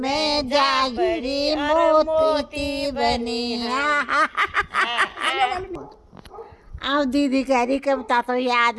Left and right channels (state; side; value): identical; both; correlation 1.00